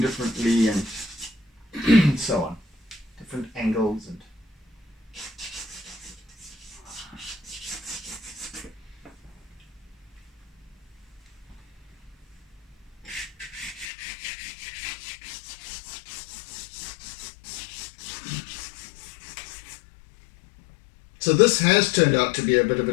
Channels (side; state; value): right; drops out; at 13.9 s